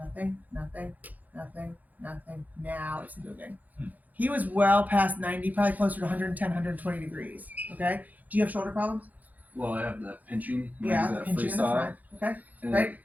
nothing, nothing, nothing. Now it's moving. He was well past 90, probably closer to 110, 120 degrees. Okay. Do you have shoulder problems? Well, I have that pinching. Yeah, that pinching in the front. Okay. And right.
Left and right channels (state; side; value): late; left; 0.080 ms